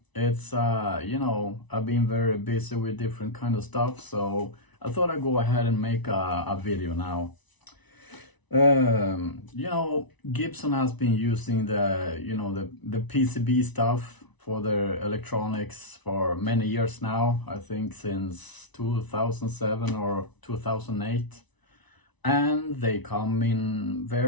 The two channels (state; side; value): late; right; 1.0 ms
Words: It's I've been very busy with different kind of stuff, so I thought I'd go ahead and make a video now. Gibson has been using the PCB stuff for their electronics for many years now. I think since 2007 or 2008, and they come in